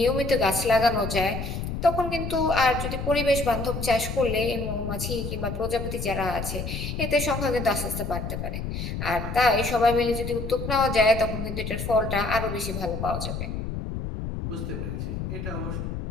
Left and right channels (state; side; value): noise; left; rumble, 5 dB below the sound